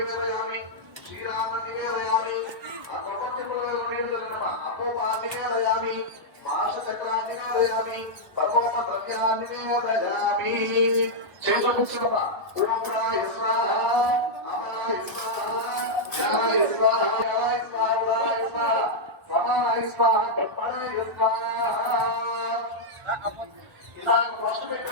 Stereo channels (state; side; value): late; left; 1.4 ms